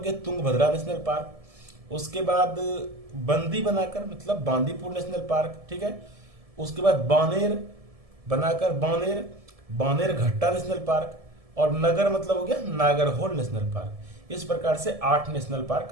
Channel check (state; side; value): late; left; 1.7 ms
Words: तुंगभद्रा नेशनल पार्क। उसके बाद बंदी बनाकर मतलब बांदीपुर नेशनल पार्क। ठीक है। उसके बाद बानेर बनाकर बानेर घट्टा नेशनल पार्क। और नगर मतलब हो गया नागरहोल नेशनल पार्क। इस प्रकार से 8 नेशनल